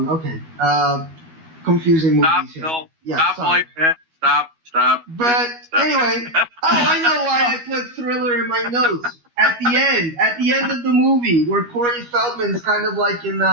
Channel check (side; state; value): left; late; 12 ms